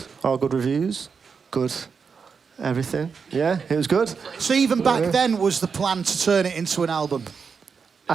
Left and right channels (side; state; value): left; quieter; 5.7 dB